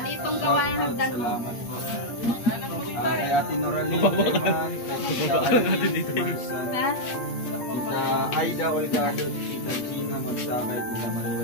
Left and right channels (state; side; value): late; right; 8.5 ms